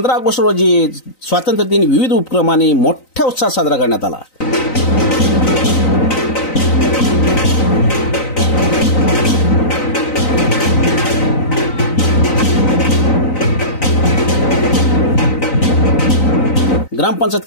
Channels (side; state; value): right; late; 3.9 ms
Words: ऑगस्ट रोजी स्वातंत्र्य दिन विविध उपक्रमांनी मोठ्या उत्साहात साजरा करण्यात आला। ग्रामपंचायत